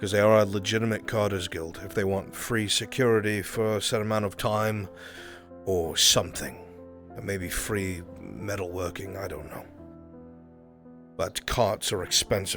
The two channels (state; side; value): identical; both; correlation 1.00